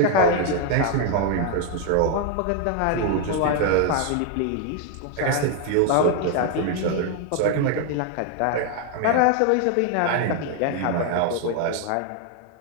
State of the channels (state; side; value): different; both; correlation 0.01